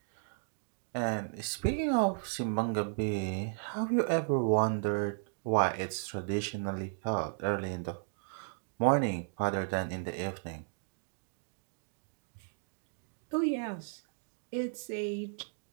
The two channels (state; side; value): silent; left; digital silence